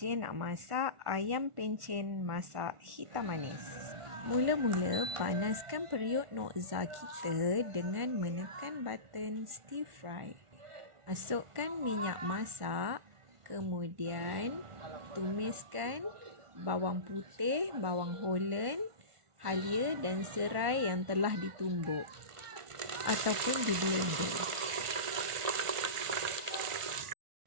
nak masak ayam pencen masak hitam manis. Mula-mula panaskan periuk Noxxa kita dengan menekan button stir fry. Masukkan minyak masak, kemudian tumiskan bawang putih, bawang Holland, halia dan serai yang telah ditumbuk ataupun di blender.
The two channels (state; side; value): late; left; 1.4 ms